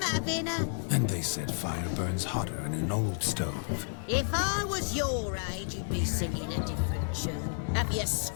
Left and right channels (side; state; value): right; silent; digital silence